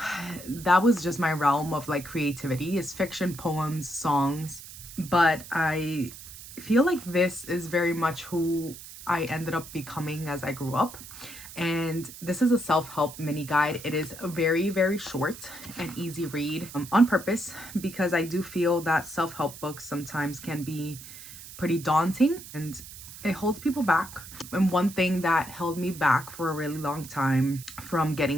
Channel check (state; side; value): noise; right; hiss, 15 dB below the sound